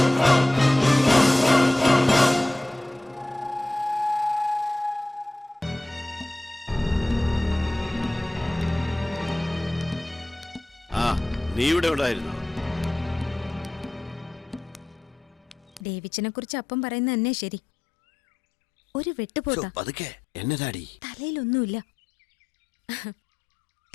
നീ ഇവിടെ ഉണ്ടായിരുന്നോ? ഡേവിച്ചിനെ കുറിച്ച് അപ്പം പറയുന്നത് തന്നെ ശരി. ഒരു വെട്ടുപോത്ത പതുക്കെ എന്നതാടി? തലയിലൊന്നുമില്ല.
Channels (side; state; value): right; drops out; at 15.8 s